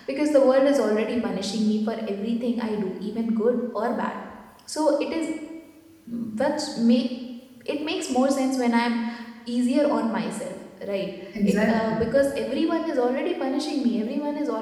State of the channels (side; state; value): both; identical; correlation 1.00